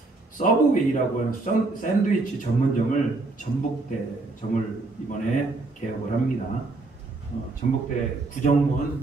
서브웨이라고 하는 샌드위치 전문점을 전북대점을 이번에 개업을 합니다. 전북대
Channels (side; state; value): left; quieter; 3.4 dB